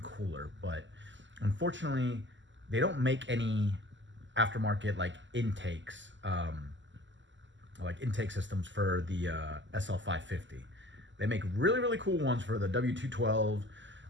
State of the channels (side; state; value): left; late; 0.54 ms